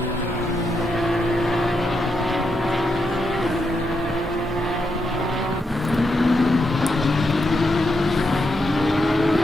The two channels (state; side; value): normal; both; correlation 0.82